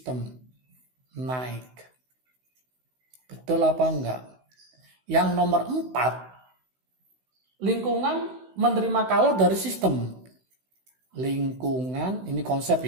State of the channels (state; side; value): late; left; 16 ms